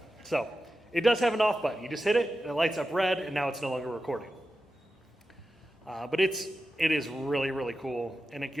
So it does have an off button. You just hit it, and it lights up red, and now it's no longer recording. But it is really cool, and it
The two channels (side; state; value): both; normal; correlation 0.92